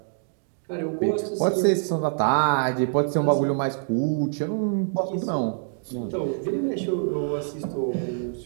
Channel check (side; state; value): left; silent; digital silence